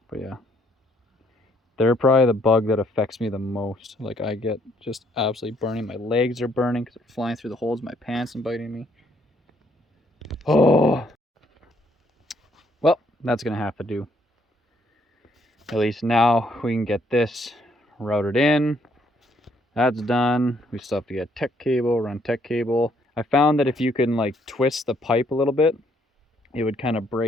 But yeah, they're probably the bug that affects me the most. Like I get just absolutely burning. My legs are burning because they're flying through the holes in my pants and biting me. Oh, well, that's gonna have to do. At least now we can get this routed in. That's done. We still have to get tech cable, run tech cable. I found that if you can like twist the pipe a little bit, it would kind of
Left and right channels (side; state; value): both; normal; correlation 0.68